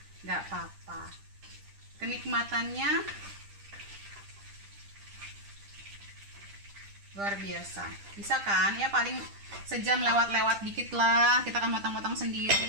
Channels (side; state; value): left; late; 10 ms